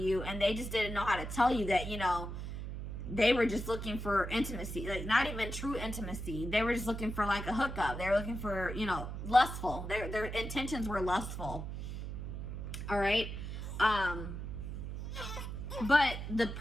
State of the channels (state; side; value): noise; right; hum, 6 dB below the sound